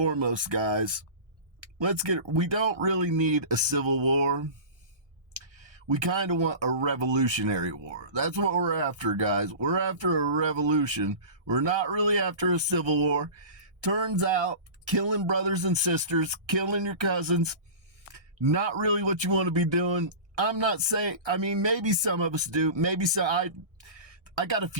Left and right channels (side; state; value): left; late; 1.6 ms